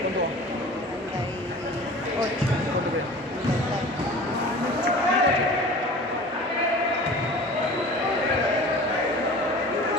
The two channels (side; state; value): both; normal; correlation 0.40